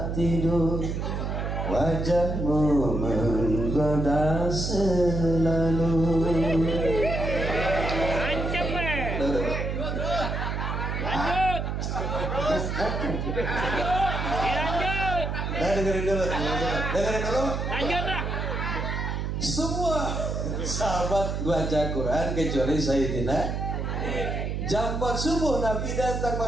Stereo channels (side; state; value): right; noise; hum, 2 dB below the sound